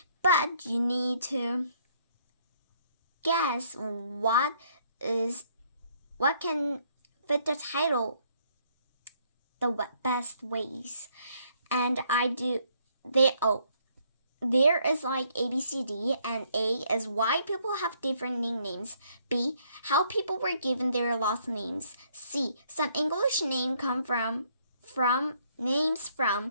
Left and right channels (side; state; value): both; inverted; correlation -0.67